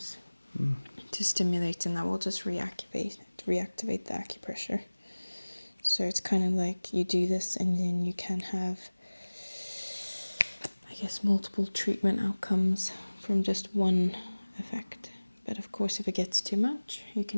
to stimulate, and that will just reactivate the acupressure. So it's kind of like you do this and then you can have, I guess, multiple treatment outcomes from just one effect. But of course, if it gets too much, you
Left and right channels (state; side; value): inverted; both; correlation -1.00